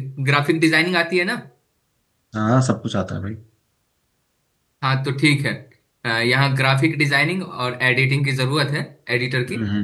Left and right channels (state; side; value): identical; both; correlation 1.00